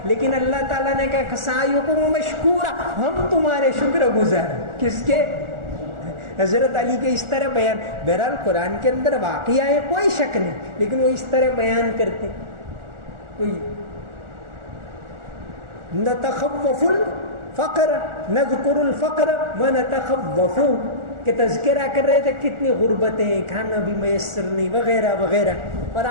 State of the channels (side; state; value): left; late; 1.4 ms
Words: لیکن اللہ تعالیٰ نے کہا سعیکم مشکورا, ہم تمہارے شکر گزار. کس کے؟ حضرت علی کے. اس طرح بیان. بہرحال قرآن کے اندر واقعہ ہے, کوئی شک نہیں, لیکن وہ اس طرح بیان کرتے. نتخوف الفقر نذکر الفقر ونتخوف, کہ تذکرہ کر رہے تھے کتنی غربتیں, کھانا بھی میسر نہیں وغیرہ وغیرہ. اور